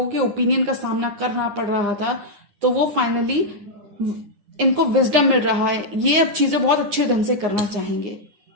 के ओपिनियन का सामना करना पड़ रहा था, तो वो फाइनली इनको विजडम मिल रहा है। ये अब चीजें बहुत अच्छे ढंग से करना चाहेंगे।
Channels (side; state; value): left; late; 9.9 ms